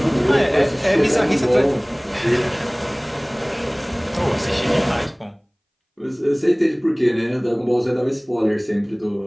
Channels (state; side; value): identical; both; correlation 1.00